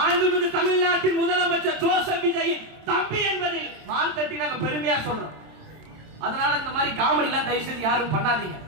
தமிழ்நாட்டின் முதலமைச்சர் ஜோசப் விஜய் தம்பி என்பதில் மார்த்தட்டி நாங்க பெருமையா சொல்றோம். அதனால இந்த மாதிரி காமெடி எல்லாம் தயவு செஞ்சு யாரும் பண்ணாதீங்க.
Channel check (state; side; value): late; left; 27 ms